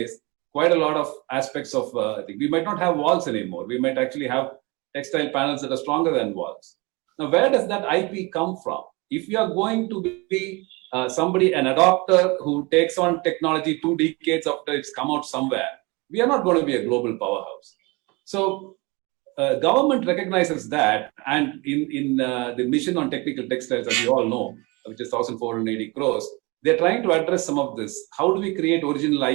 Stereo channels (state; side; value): quieter; left; 26.3 dB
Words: quite a lot of aspects of we might not have walls anymore. We might actually have textile panels that are stronger than walls. Now, where does that IP come from? If you are going to be an adopter who takes on technology 2 decades after it's come out somewhere, we are not going to be a global powerhouse. So government recognizes that, and in the mission on technical textiles, as you all know, which is 1,480 crores, They're trying to address some of this. How do we create original